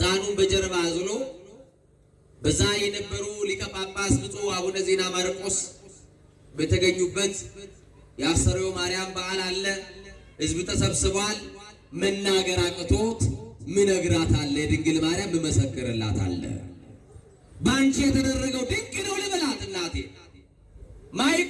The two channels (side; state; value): both; identical; correlation 1.00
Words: በጀርባ አዝሎ በዛ የነበሩ ሊቀ ጳጳስ ብፁዕ አቡነ ዜና ማርቆስ በተገኙበት የአስተርእዮ ማርያም በዓል አለ። ሕዝብ ተሰብስቧል። መናገር አቅቶት ምነግራት አለ፣ ድንግል ማርያም መመሰክርላት አለ። ባንቺ የተደረገው ድንቅ ነው ልበላት እናቴ።